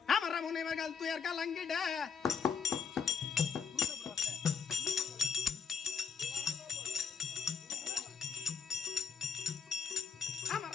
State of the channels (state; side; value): quieter; right; 6.4 dB